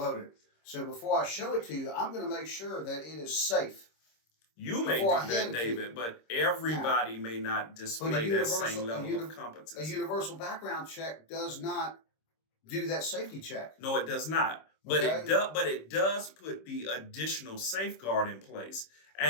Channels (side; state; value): right; late; 26 ms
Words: So before I show it to you, I'm going to make sure that it is safe. You may do that, David, but everybody may not display that same level of competence. A universal background check does not do that safety check. No, it does not. But it does put the additional safeguard in place.